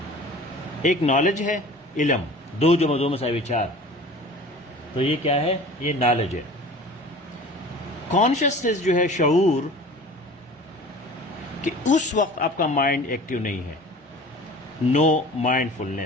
ایک نالج ہے, علم, 2 + 2 = 4, تو یہ کیا ہے؟ یہ نالج ہے. کانشیسنیس جو ہے شعور, کہ اس وقت آپ کا مائنڈ ایکٹیو نہیں ہے, نو مائنڈ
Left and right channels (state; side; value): normal; both; correlation 0.42